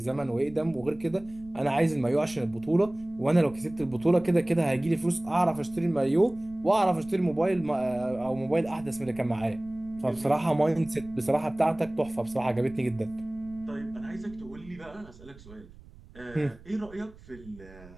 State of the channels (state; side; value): noise; right; rumble, 21 dB below the sound